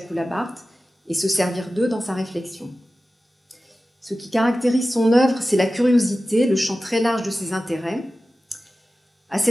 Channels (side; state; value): both; normal; correlation 0.95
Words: et se servir d'eux dans sa réflexion. Ce qui caractérise son œuvre, c'est la curiosité, le champ très large de ses intérêts. À